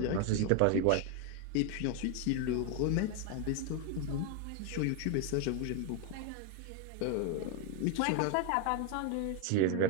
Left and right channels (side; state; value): both; different; correlation 0.01